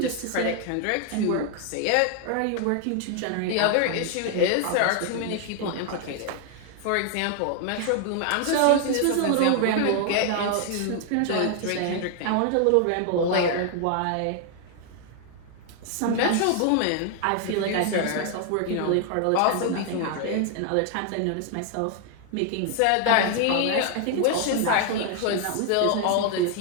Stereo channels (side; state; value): both; different; correlation 0.00